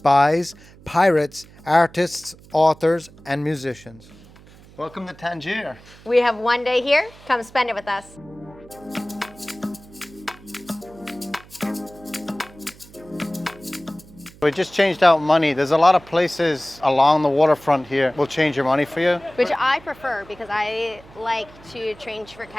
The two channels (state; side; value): noise; right; hum, 23 dB below the sound